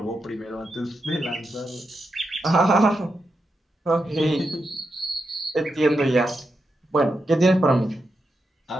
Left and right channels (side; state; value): both; normal; correlation 0.86